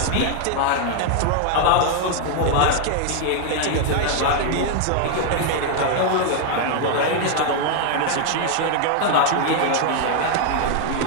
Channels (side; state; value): both; different; correlation 0.00